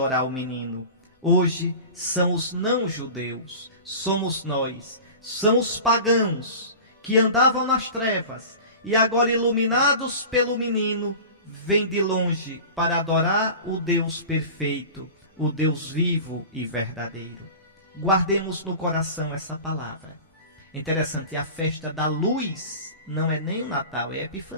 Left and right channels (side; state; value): both; inverted; correlation -0.36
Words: o menino. Hoje são os não-judeus, somos nós, são os pagãos que andavam nas trevas e agora iluminados pelo menino, vêm de longe para adorar o Deus perfeito, o Deus vivo e verdadeiro. Guardemos no coração essa palavra. Interessante, a festa da luz não é nem o Natal, é a